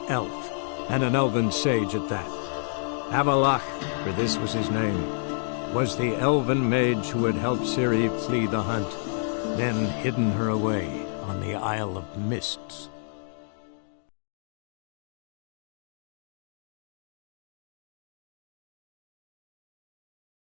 elf, and an elven sage at that. Avallac'h, for this was his name, was the elven mage who had helped Ciri flee the hunt, then hidden her away on the Isle of Mists.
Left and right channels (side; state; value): right; silent; digital silence